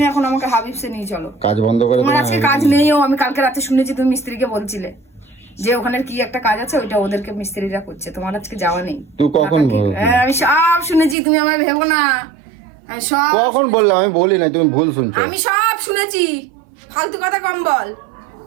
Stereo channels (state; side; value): drops out; left; at 11.2 s